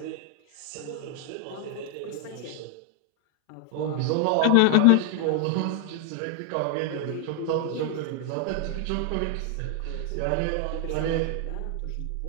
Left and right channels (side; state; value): both; different; correlation 0.00